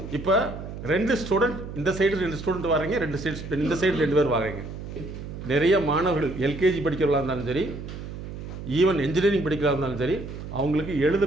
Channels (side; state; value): right; noise; hum, 10 dB below the sound